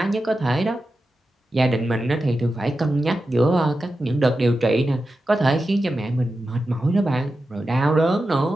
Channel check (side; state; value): both; normal; correlation 0.91